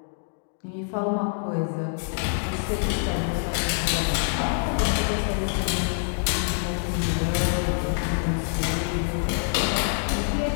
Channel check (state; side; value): silent; right; digital silence